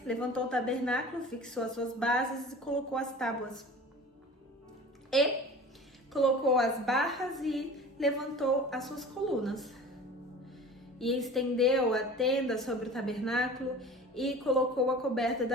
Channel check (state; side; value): normal; both; correlation 0.40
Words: levantou o tabernáculo, fixou as suas bases e colocou as tábuas. E colocou as barras e levantou as suas colunas. E estendeu a tenda sobre o tabernáculo e colocou a coberta